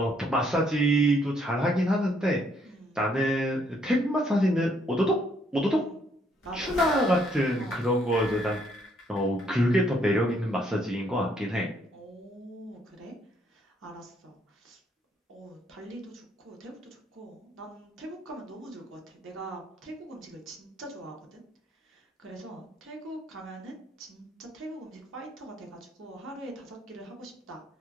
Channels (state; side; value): normal; both; correlation 0.69